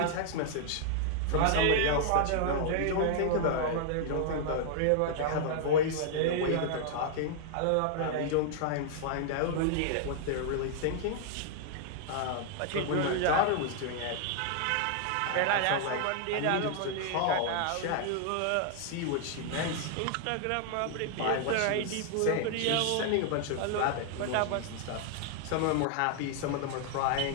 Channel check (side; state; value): both; different; correlation 0.00